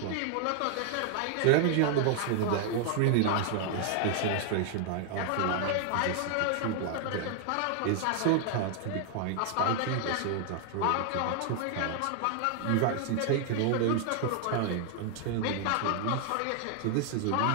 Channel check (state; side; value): different; both; correlation 0.00